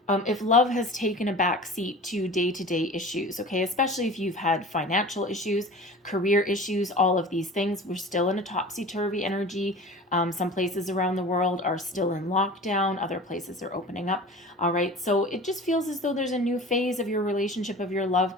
If love has taken a back seat to day-to-day issues, okay, especially if you've had financial issues, career issues, all of these things, we're still in a topsy-turvy energy. Some places around the world are still in lockdown. Other places are opening up. All right. So it just feels as though there's a new phase of your relationship, of your love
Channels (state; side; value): normal; both; correlation 0.38